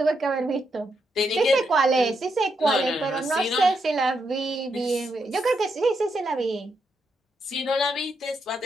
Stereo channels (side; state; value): both; normal; correlation 0.81